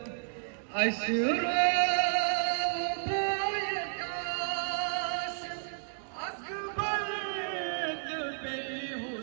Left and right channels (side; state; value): left; silent; digital silence